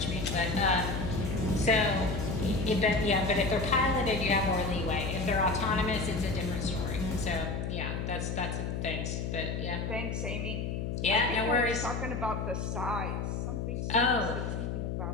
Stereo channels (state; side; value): noise; left; hum, 3 dB below the sound